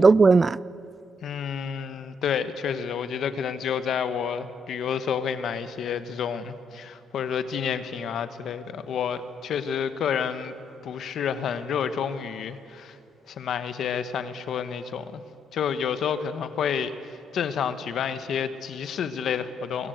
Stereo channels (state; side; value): normal; both; correlation 0.75